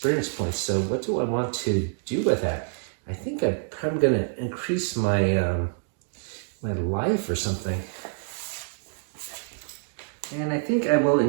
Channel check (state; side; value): silent; left; digital silence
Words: points. So what do I want to do with that? I think I'm probably gonna increase my my life or something. And I think I will